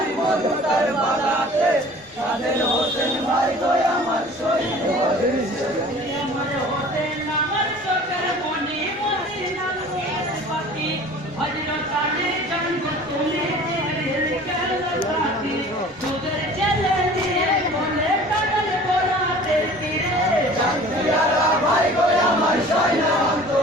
মধুতার বালাতে কাদের হোসেন ভাই গো আমার শহীদ হয়েছে আমার হোসেন আমার চোখের মনি মদিনার পাতি হযরত আলী জন্ম তুমি সাথী তোদের জেলে দিয়ে বলে কাগজ পোড়াতে তীরে জানতিয়ারা ভাই গো আমার সয়না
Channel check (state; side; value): normal; both; correlation 0.45